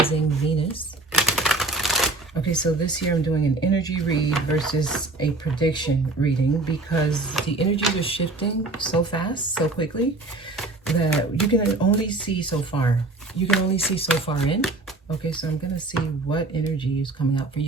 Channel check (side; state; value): left; quieter; 3.2 dB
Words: Venus. Okay, so this year I'm doing an energy read versus a prediction reading because the energies are shifting so fast, so quickly, that you can only see so far. You can only see so far in. Okay, so I'm going to see what energy is coming out for